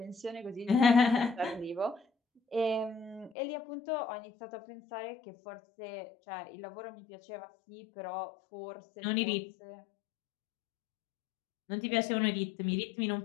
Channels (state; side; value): drops out; right; at 3.3 s